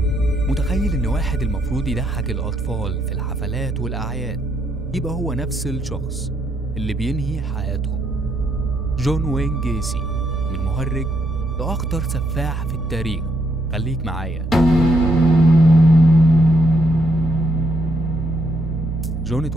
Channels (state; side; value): normal; both; correlation 0.74